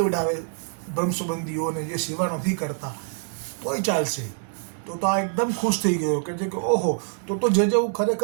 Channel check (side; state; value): left; silent; digital silence